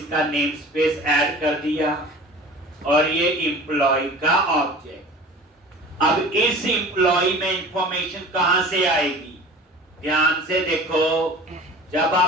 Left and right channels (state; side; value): normal; both; correlation 0.41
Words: नेम स्पेस ऐड कर दिया, और ये एम्प्लॉय का ऑब्जेक्ट। अब इस एम्प्लॉय में इंफॉर्मेशन कहां से आएगी, ध्यान से देखो। जब